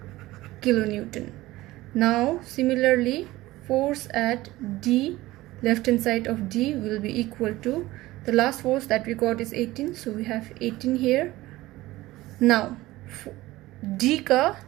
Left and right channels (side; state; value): left; quieter; 17.8 dB